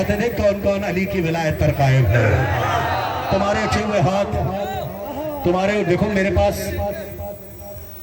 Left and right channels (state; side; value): identical; both; correlation 1.00